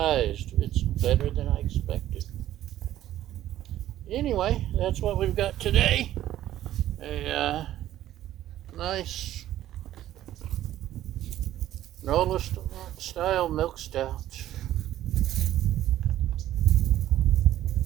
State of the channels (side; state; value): left; quieter; 13.1 dB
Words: it's better than I expected. Anyway, that's what we've got today. A nice NOLA style milk stout.